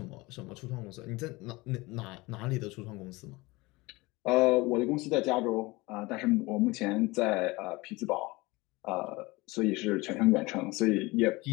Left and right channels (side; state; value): right; quieter; 22.7 dB